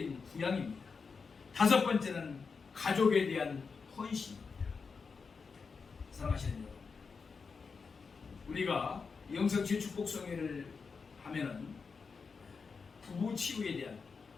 부양입니다. 다섯 번째는 가족에 대한 헌신입니다. 사랑하시는 여러분, 우리가 영성주의 축복성회를 하면은 부부 치유에 대한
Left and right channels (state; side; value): quieter; right; 5.1 dB